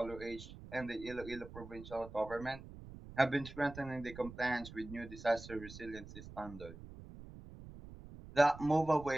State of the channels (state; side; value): noise; right; rumble, 14 dB below the sound